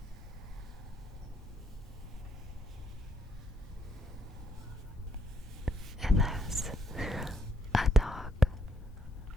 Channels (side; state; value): both; normal; correlation 0.73